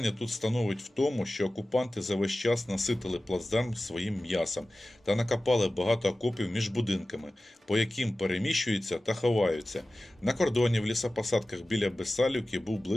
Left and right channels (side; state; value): both; normal; correlation 0.96